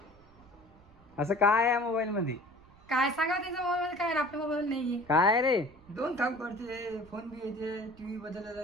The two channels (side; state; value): right; noise; rumble, 27 dB below the sound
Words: असं काय आहे मोबाईल मध्ये? काय सांगा त्यांच्या मोबाईल मध्ये काय, आपल्या मोबाईल नाहीये. काय रे? 2 काम करते, फोन बी येते, टीव्ही बदलला